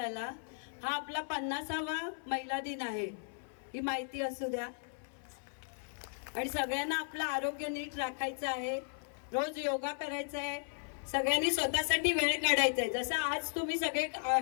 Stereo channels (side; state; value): right; silent; 54 dB below the other